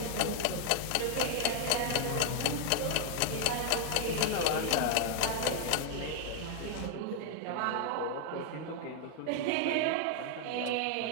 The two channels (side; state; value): both; different; correlation 0.00